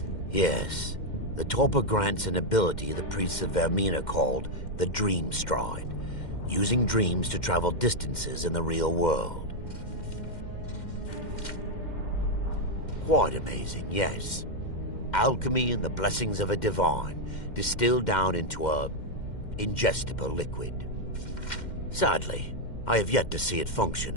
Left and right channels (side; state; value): right; late; 2.1 ms